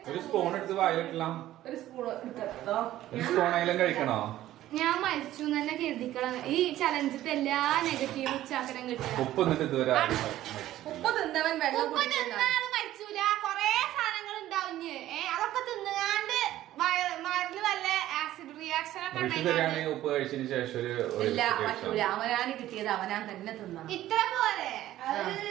ഒരു സ്പൂൺ എടുത്ത് വായിലിട്ടില്ല. ഒരു സ്പൂൺ എടുത്തോ. ഒരു സ്പൂണായാലും കഴിക്കണോ? ഞാൻ മരിച്ചു തന്നെ കരുതിക്കണം. ഈ ചലഞ്ചിട്ട് എല്ലാ നെഗറ്റീവ് ഉച്ചാക്കരം കിട്ടും. ഉപ്പ് എന്നിട്ട് ഇതുവരെ ഉപ്പ് തിന്നവൻ വെള്ളം മരിച്ചൂല. കൊറേ സാധനങ്ങൾ ഉണ്ടാവും. അതൊക്കെ തിന്നുകാണ്ട് മരുന്ന് വല്ല ആസിഡ് റിയാക്ഷൻ ഒക്കെ ഉപ്പ് കഴിച്ചതിന് ശേഷം ഇല്ല പറ്റൂല. അവനാണ് കിട്ടിയത്, അവനാൻ തന്നെ തിന്നണം. ഇത്ര പോലെ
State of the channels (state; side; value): quieter; left; 14.0 dB